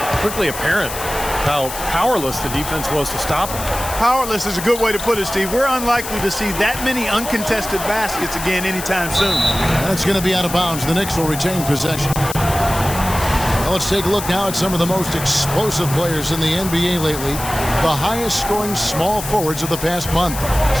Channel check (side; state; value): left; noise; hiss, 8 dB below the sound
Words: quickly apparent how powerless the defense was to stop him. Powerless is a good way to put it, Steve. We're unlikely to see that many uncontested baskets again anytime soon. That's going to be out of bounds. The Knicks will retain possession. Well, let's take a look now at some of the most explosive players in the NBA lately. The highest scoring small forwards of the past month.